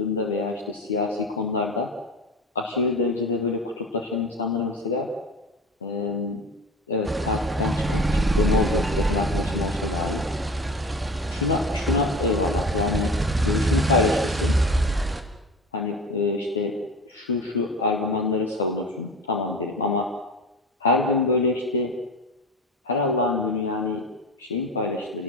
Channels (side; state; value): both; normal; correlation 0.31